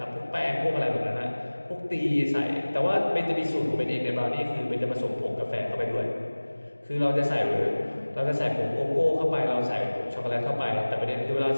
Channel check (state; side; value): inverted; both; correlation -1.00